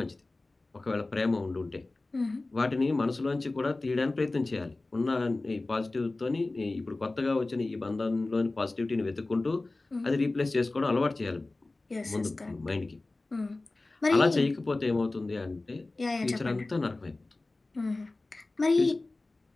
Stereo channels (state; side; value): quieter; right; 3.1 dB